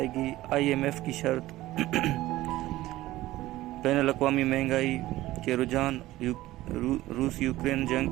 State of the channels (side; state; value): left; quieter; 16.5 dB